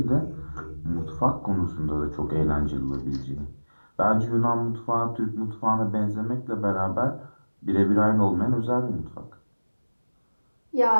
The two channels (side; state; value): both; inverted; correlation -1.00